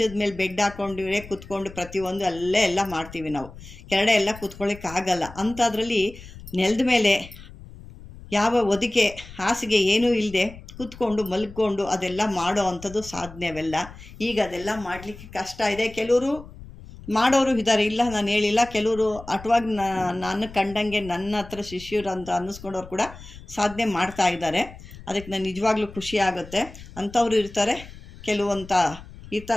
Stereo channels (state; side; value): noise; left; rumble, 17 dB below the sound